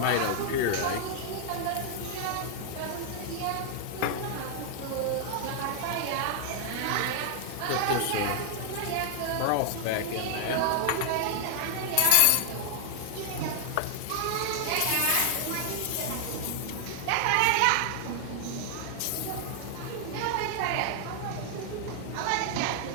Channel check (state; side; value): different; both; correlation 0.00